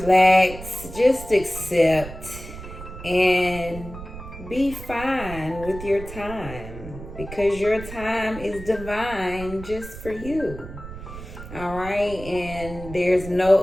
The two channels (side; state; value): right; noise; rumble, 12 dB below the sound